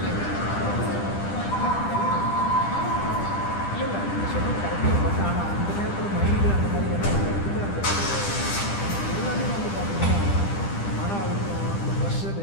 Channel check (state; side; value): late; right; 10 ms